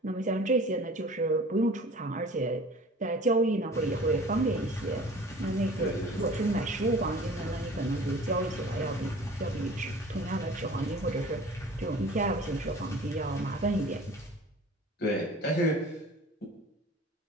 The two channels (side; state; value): both; normal; correlation 0.44